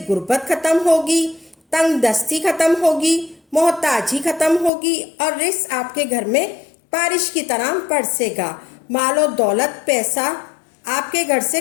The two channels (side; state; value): right; drops out; at 4.7 s